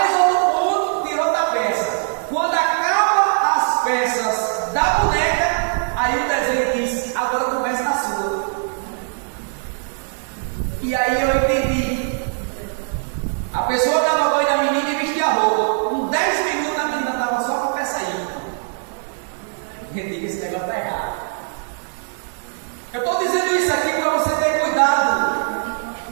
outro ponto, tira outra peça. Quando acaba as peças da boneca, aí o desenho diz, agora começa na sua. E aí eu entendi. A pessoa dava banho na menina e vestia a roupa. Com 10 minutos a menina estava só com a peça aí. Eu digo, esse negócio está errado. Eu estou dizendo isso aqui para você ter cuidado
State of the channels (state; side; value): silent; left; digital silence